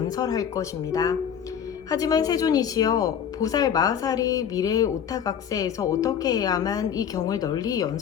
것입니다. 하지만 세존이시여, 보살 마하살이 미래 오타각세에서 어떻게 해야만 이 경을 널리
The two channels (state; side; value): quieter; right; 8.4 dB